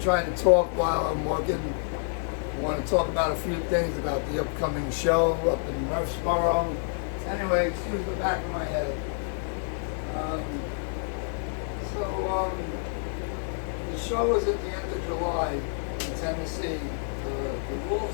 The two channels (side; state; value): right; silent; 56 dB below the other